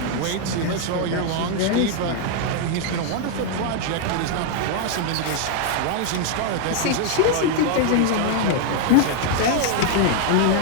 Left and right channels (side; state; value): both; different; correlation 0.00